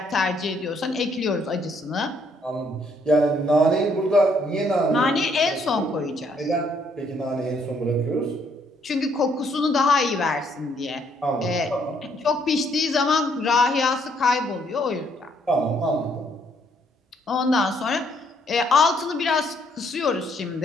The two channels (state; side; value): normal; both; correlation 0.69